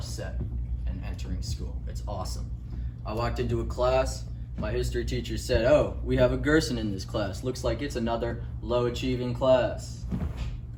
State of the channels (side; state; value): both; identical; correlation 1.00